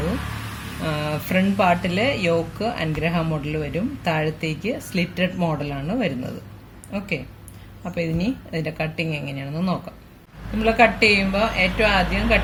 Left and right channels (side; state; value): both; identical; correlation 1.00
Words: ഫ്രണ്ട് പാർട്ടിൽ യോക്ക് അൻഗ്രഹ മോഡൽ വരും, താഴത്തേക്ക് സ്ലിറ്റഡ് മോഡലാണ് വരുന്നത്. ഓക്കെ, അപ്പോൾ ഇതിന്റെ കട്ടിങ് എങ്ങനെയാണെന്ന് നോക്കാം. നമ്മൾ കട്ട് ചെയ്യുമ്പോൾ ഏറ്റവും ആദ്യം